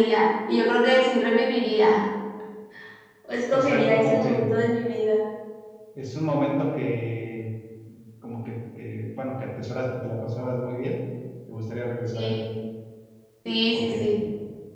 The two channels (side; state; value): both; identical; correlation 1.00